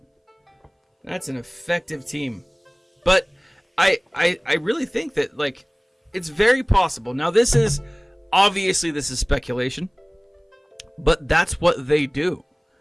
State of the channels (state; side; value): identical; both; correlation 1.00